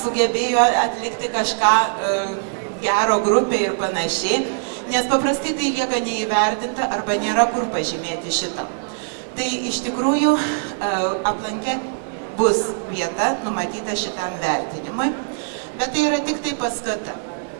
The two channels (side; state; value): left; silent; digital silence